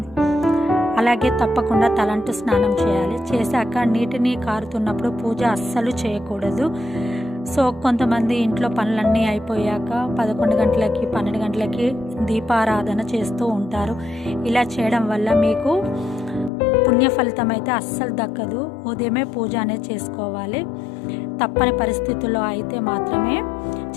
అలాగే తప్పకుండా తలంటు స్నానం చేయాలి. చేశాక నీటిని కారుతున్నప్పుడు పూజ అస్సలు చేయకూడదు. సో కొంతమంది ఇంట్లో పనులన్నీ అయిపోయాక 11 గంటలకి 12 గంటలకి దీపారాధన చేస్తూ ఉంటారు. ఇలా చేయడం వల్ల మీకు పుణ్య ఫలితం అయితే అస్సలు దక్కదు. ఉదయమే పూజ అనేది చేసుకోవాలి. తప్పని పరిస్థితుల్లో అయితే మాత్రమే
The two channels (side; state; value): right; drops out; at 16.5 s